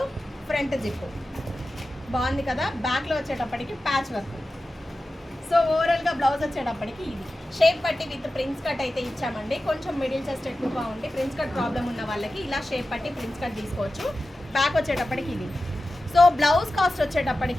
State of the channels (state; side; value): normal; both; correlation 0.94